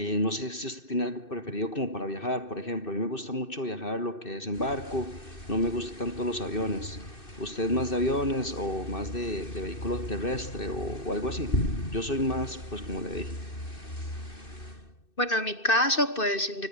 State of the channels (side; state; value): right; late; 2.6 ms